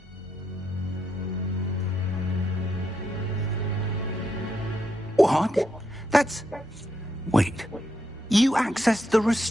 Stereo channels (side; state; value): both; normal; correlation 0.80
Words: What? That's... Wait. You accessed the